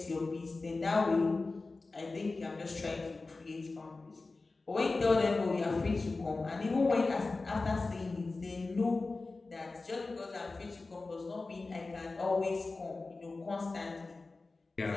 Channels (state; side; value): quieter; right; 3.6 dB